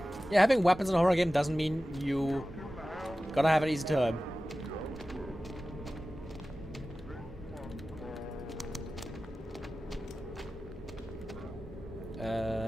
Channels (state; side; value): normal; both; correlation 0.95